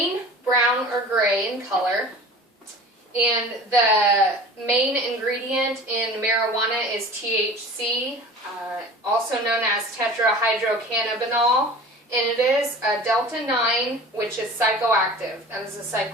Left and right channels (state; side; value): normal; both; correlation 0.40